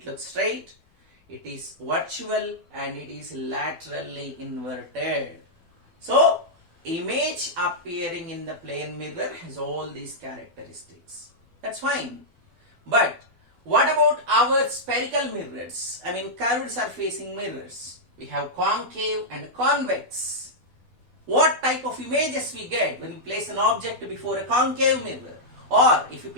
looks straight, it is virtual, and it is laterally inverted. So, image appearing in the plane mirror has all these characteristics. That's fine. But, what about our spherical mirrors? I mean, curved surfacing mirrors. We have concave and convex. What type of images we get when we place an object before a concave mirror? Or if you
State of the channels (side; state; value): left; late; 12 ms